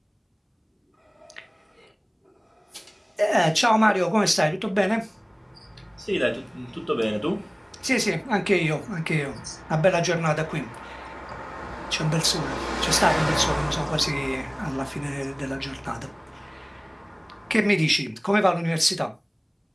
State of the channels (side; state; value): both; identical; correlation 1.00